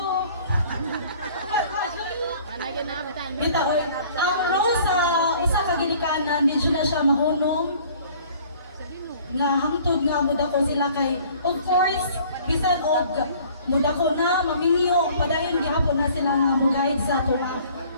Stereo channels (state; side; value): inverted; both; correlation -0.53